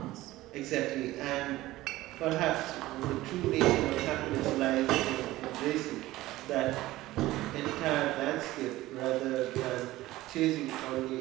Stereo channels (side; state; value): left; quieter; 17.1 dB